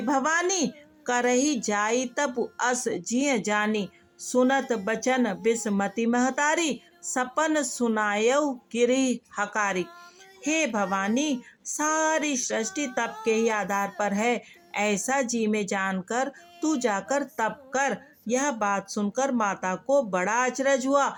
भवानी, करही जाई तप अस जिय जानी, सुनत बचन बिस्मति महतारी, सपन सुनायऊ गिरि हकारी। हे भवानी, सारी सृष्टि तप के ही आधार पर है, ऐसा जी में जानकर तू जाकर तप कर। यह बात सुनकर माता को बड़ा अचरज हुआ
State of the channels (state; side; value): identical; both; correlation 1.00